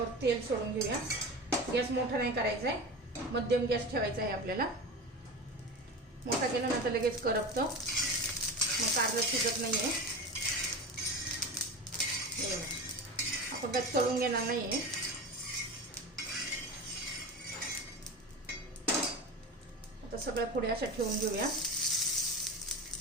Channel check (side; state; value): both; normal; correlation 0.27